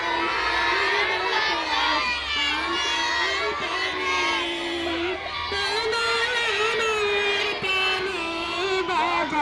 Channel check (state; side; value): identical; both; correlation 1.00